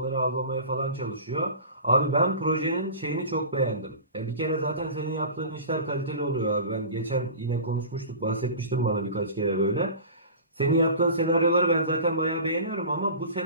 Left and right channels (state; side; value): inverted; both; correlation -0.36